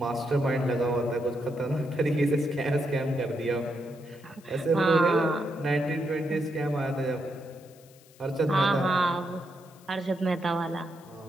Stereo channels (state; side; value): noise; left; hiss, 26 dB below the sound